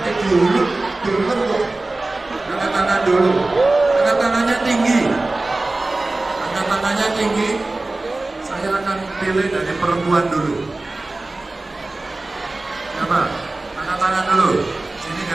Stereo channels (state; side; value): quieter; left; 3.0 dB